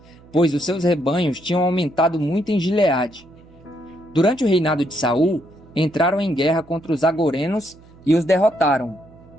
pois os seus rebanhos tinham aumentado muito em Gileade. Durante o reinado de Saul, entraram em guerra contra os agorenos e os derrotaram,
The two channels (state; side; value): noise; right; hum, 25 dB below the sound